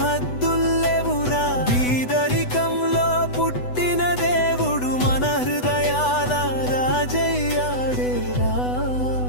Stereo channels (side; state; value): right; late; 8.0 ms